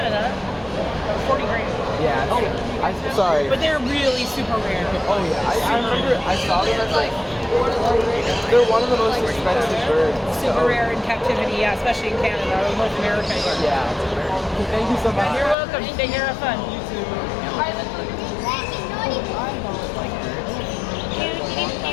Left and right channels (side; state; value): right; drops out; at 15.6 s